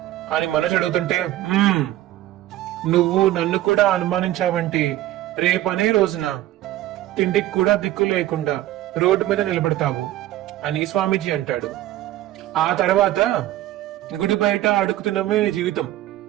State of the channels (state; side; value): quieter; left; 14.6 dB